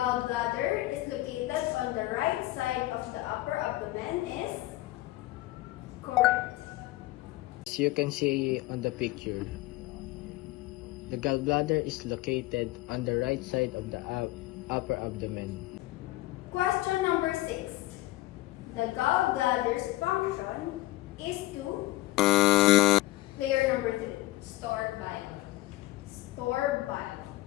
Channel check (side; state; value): right; quieter; 18.0 dB